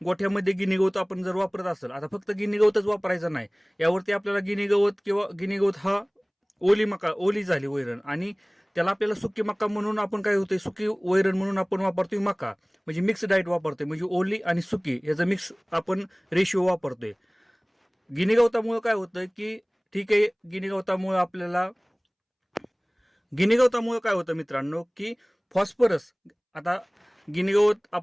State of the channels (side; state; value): both; identical; correlation 1.00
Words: गोठ्यामध्ये गिनी गवत आपण जर वापरत असेल, आता फक्त गिनी गवतच वापरायचं नाही, यावरती आपल्याला गिनी गवत किंवा गिनी गवत हा ओली झाली वैरण आणि त्याला आपल्याला सुकी मका म्हणून आपण काय होतंय, सुकी वैरण म्हणून आपण वापरतोय मका, म्हणजे मिक्स डाएट वापरतोय, म्हणजे ओली आणि सुकी याचा मिक्स आपण रेशिओ वापरतोय. गिनी गवतामुळे काय होतं की ठीक आहे, गिनी गवतामुळे काय होतं मित्रांनो की फॉस्फरस, आता गिनी गवत